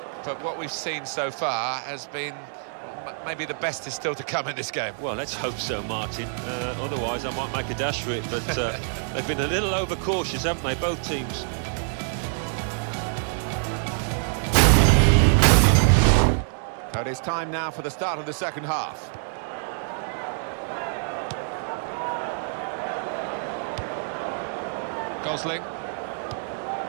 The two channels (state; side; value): silent; left; digital silence